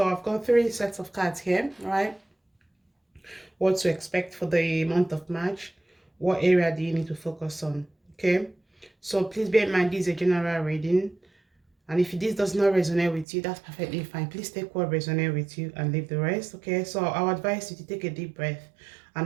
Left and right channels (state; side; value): drops out; left; at 13.2 s